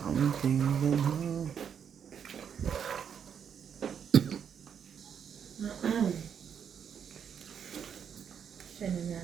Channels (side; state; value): left; quieter; 7.8 dB